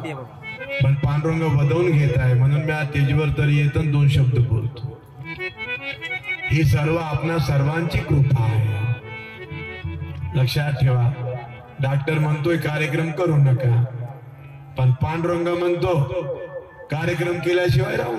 पण पांडुरंग वदवून घेत आहे म्हणून मी स्टेजवर तरी येतो 2 शब्द बोलतो. ही सर्व आपणा सर्वांची कृपा आहे, लक्षात ठेवा. डॉक्टर म्हणतोय कार्यक्रम करू नका, पण पांडुरंग म्हणतो कार्यक्रम केल्याशिवाय राहू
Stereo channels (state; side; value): identical; both; correlation 1.00